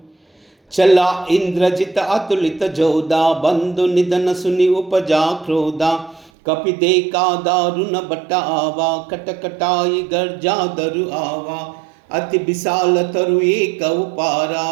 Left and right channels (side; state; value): left; drops out; at 6.3 s